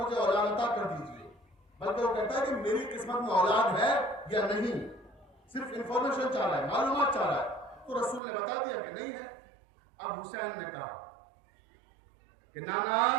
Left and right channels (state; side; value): drops out; left; at 8.2 s